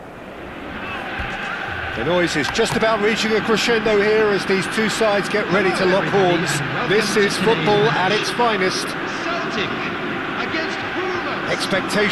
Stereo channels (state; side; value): identical; both; correlation 1.00